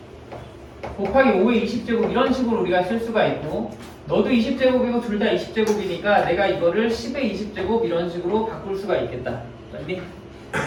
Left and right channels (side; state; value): both; identical; correlation 1.00